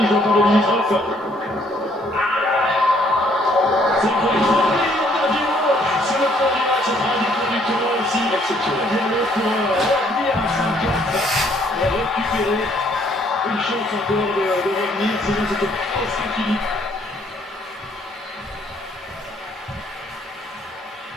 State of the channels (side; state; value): both; normal; correlation 0.65